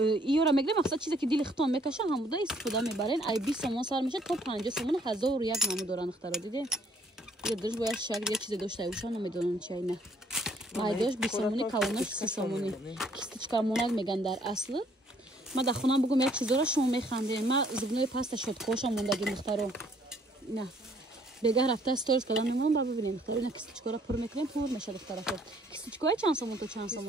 ایورا میگیریم مقصد چیزی که دل ختم میکشه همودا استفاده میبرین ای 20 سومون سر میشه تا 50 سومون 1001 نامو دارن اختراع دیدین یه درش باید شکل یه چیز داشته باشن نمیدونم چی نه مایداش 20 سومونی کالونش 30 سومونی کیستچکا موناک میگن در اصل ما در خونم بگم یک چیزا را شما میخندین ما زبونای پاست شد خوشم موندگی مختارو نه بگه رفته استورز کردم میمونم با ببینیم مختارو نه کیستچکا را پر میکنیم پر میشه دخترا خود کیستچکا چند سومون تو چند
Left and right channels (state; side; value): normal; both; correlation 0.64